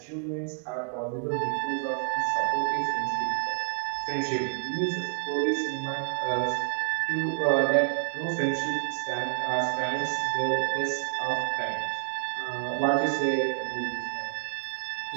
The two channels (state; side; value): silent; left; 59 dB below the other